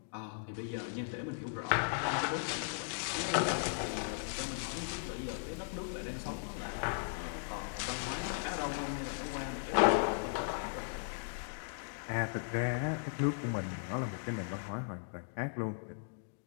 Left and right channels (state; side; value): silent; right; digital silence